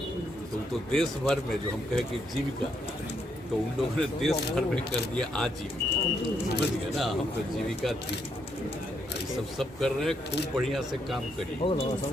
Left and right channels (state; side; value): normal; both; correlation 0.76